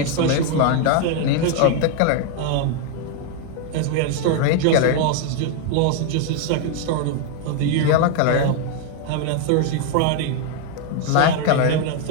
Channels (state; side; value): different; both; correlation 0.01